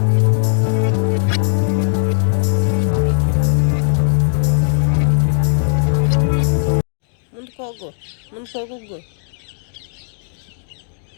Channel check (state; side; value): silent; right; digital silence